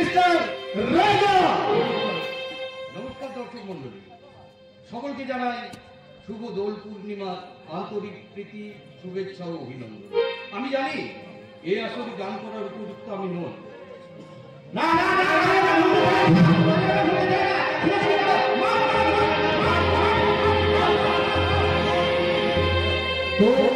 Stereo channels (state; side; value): identical; both; correlation 1.00